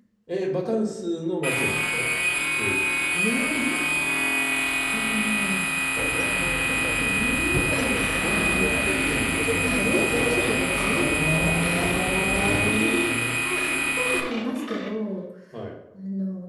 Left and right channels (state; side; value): identical; both; correlation 1.00